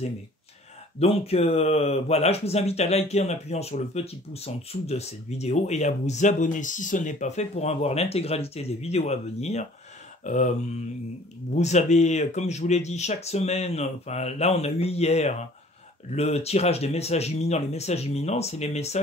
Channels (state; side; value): normal; both; correlation 0.52